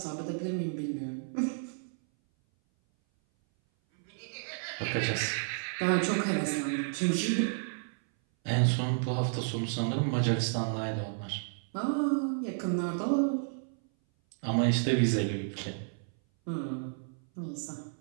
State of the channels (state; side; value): silent; left; 57 dB below the other